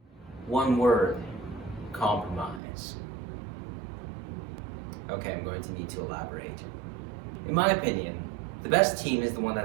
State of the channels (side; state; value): left; drops out; at 2.6 s